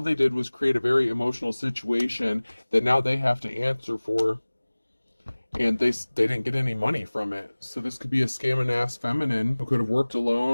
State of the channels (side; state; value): both; inverted; correlation -1.00